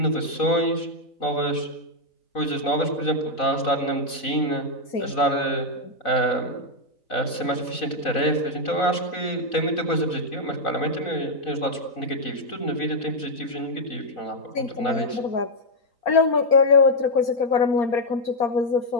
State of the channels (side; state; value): right; late; 4.0 ms